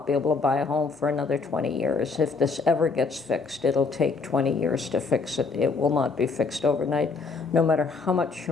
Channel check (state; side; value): quieter; right; 4.4 dB